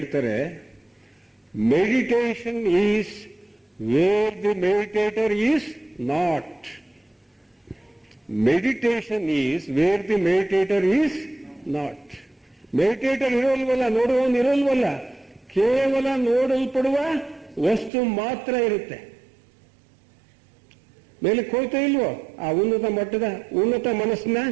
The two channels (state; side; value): drops out; left; at 17.9 s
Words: meditation is where the meditator is not. Meditation is where the meditator is not. Meditator ಇರೋಲ್ವಲ್ಲ, ನೋಡುವವನು ಇರೋಲ್ವಲ್ಲ, ಕೇವಲ ನೋಡಲ್ಪಡುವ ವಸ್ತು ಮಾತ್ರ ಇರುತ್ತೆ. ಮೇಲಕ್ಕೆ ಹೋಗ್ತಾ ಇಲ್ವೋ? ಆ ಉನ್ನತ ಮನಸ್ಸಿನ